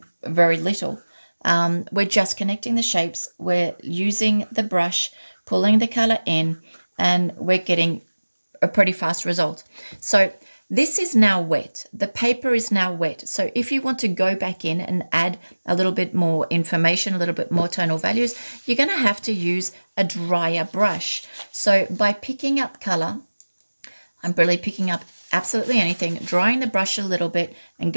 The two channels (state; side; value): inverted; both; correlation -1.00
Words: very little. We're just connecting the shapes, we're using the brush, pulling the color in, and we're getting a pretty fast result. So this is now wet. The paper is now wet. So if you want to go back in and add a little bit more information, a little bit more tonal values, you're going to have to use a drier brush. So by picking up color, I'm really picking up absolutely anything, drying the brush a little bit and